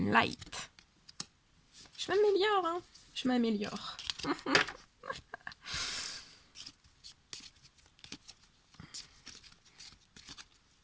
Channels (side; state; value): both; identical; correlation 1.00